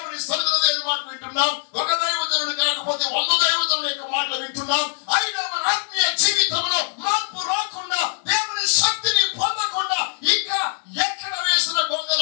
సన్నిధిలో దేవుని మాటలు వింటున్నాం. ఒక దైవజనుడు కాకపోతే 100 దైవజనుల యొక్క మాటలు వింటున్నాం. అయినా మన ఆత్మీయ జీవితంలో మార్పు రాకుండా, దేవుని శక్తిని పొందకుండా ఇంకా ఎక్కడ వేసిన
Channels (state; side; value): silent; right; digital silence